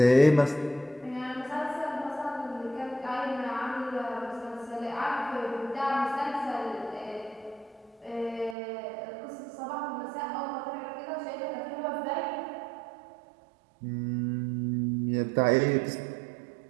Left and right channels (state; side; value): drops out; left; at 8.6 s